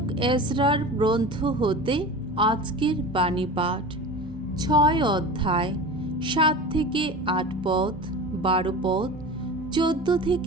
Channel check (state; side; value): normal; both; correlation 0.33